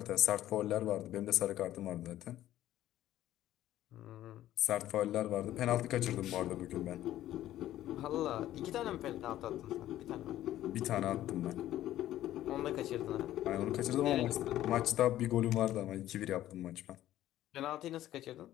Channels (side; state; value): right; quieter; 13.4 dB